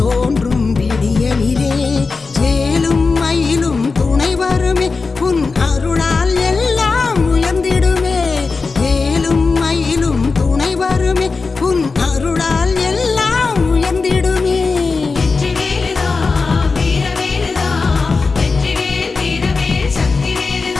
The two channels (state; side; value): quieter; right; 4.3 dB